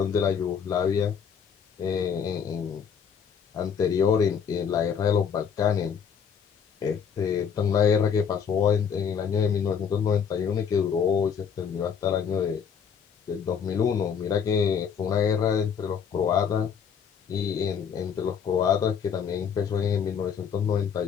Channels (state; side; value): quieter; right; 7.2 dB